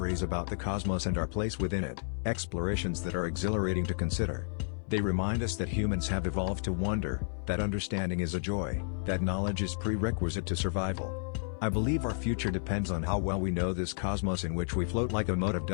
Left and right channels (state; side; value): silent; right; 57 dB below the other